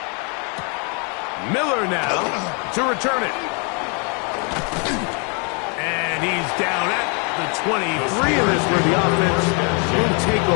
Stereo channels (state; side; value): quieter; right; 35.9 dB